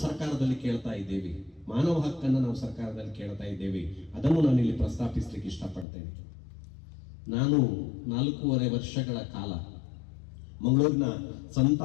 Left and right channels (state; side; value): drops out; right; at 5.9 s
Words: ಸರ್ಕಾರದಲ್ಲಿ ಕೇಳ್ತಾ ಇದ್ದೇವೆ, ಮಾನವ ಹಕ್ಕನ್ನು ನಾವು ಸರ್ಕಾರದಲ್ಲಿ ಕೇಳ್ತಾ ಇದ್ದೇವೆ. ಅದನ್ನು ನಾನು ಇಲ್ಲಿ ಪ್ರಸ್ತಾಪಿಸಲಿಕ್ಕೆ ಇಷ್ಟಪಡ್ತೇನೆ. ನಾನು 4.5 ವರ್ಷಗಳ ಕಾಲ ಮಂಗಳೂರಿನ ಸಂತ